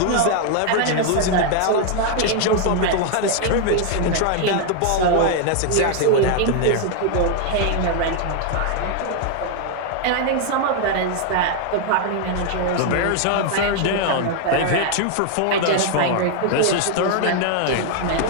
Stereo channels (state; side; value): different; both; correlation 0.00